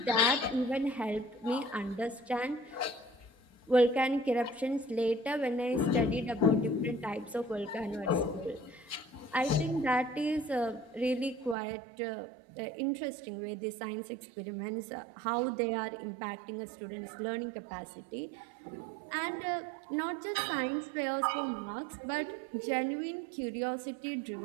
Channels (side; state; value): left; drops out; at 11.6 s